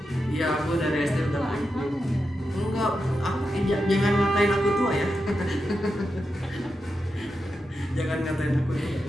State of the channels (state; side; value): normal; both; correlation 0.88